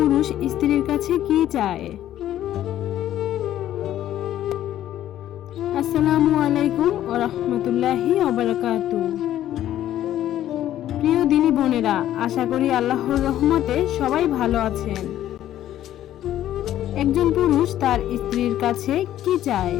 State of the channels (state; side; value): quieter; right; 12.3 dB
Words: স্ত্রীর কাছে কি চায়? আসসালামু আলাইকুম ওয়া রাহমাতুল্লাহি ওয়া বারাকাতুহু। প্রিয় দিনী বোনেরা, আশা করি আল্লাহর রহমতে সবাই ভালো আছেন। একজন পুরুষ তার স্ত্রীর কাছে কি চায়?